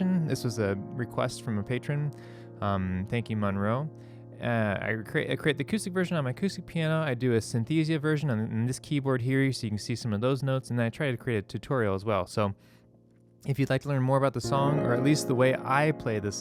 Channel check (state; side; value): identical; both; correlation 1.00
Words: This was a request from a patron. Thank you, Monroe. I create the acoustic version on my acoustic piano. I do a Synthesia version on this keyboard here, so you can see some of those notes, and then I try to create a tutorial as well. So if you'd like to learn more about the song, or at least the way I play the